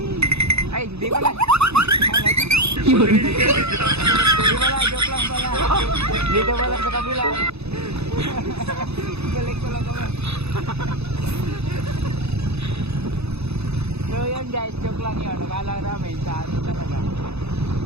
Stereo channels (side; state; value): left; late; 0.79 ms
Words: Ay, hindi pala. Hindi pala, joke lang pala. Dito pala sa kabila. Balik ko lang kami. So yun guys, joke lang yun. Nakala namin sa ano talaga.